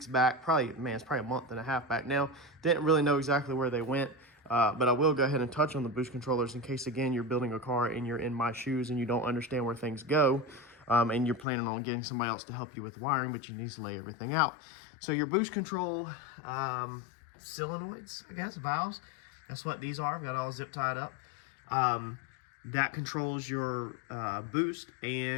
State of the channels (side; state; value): right; drops out; at 11.5 s